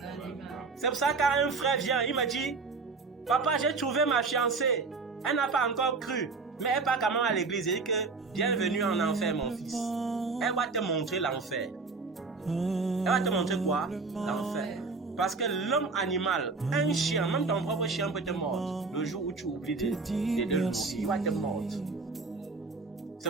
C'est pour ça que quand un frère vient, il me dit, papa, j'ai trouvé ma fiancée. Elle n'a pas encore cru, mais elle part quand même à l'église. Elle dit que bienvenue en enfer, mon fils. Elle va te montrer l'enfer. Elle va te montrer quoi? L'enfer. Parce que l'homme animal, un chien, même ton propre chien peut te mordre. Le jour où tu oublies de le nourrir, il va te mordre. C'est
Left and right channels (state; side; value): quieter; left; 4.2 dB